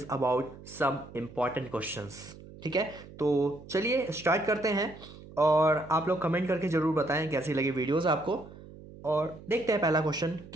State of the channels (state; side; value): noise; right; hum, 17 dB below the sound